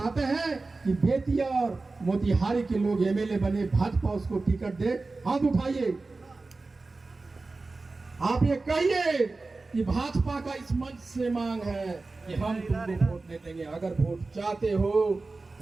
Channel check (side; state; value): left; quieter; 3.6 dB